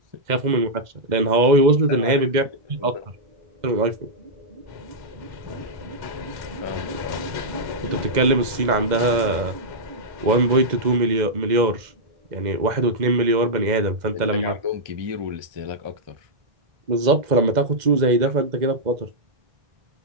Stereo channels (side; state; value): left; late; 2.1 ms